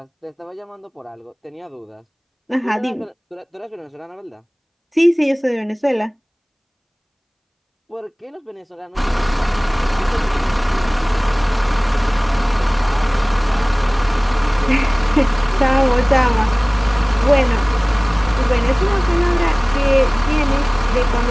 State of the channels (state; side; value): identical; both; correlation 1.00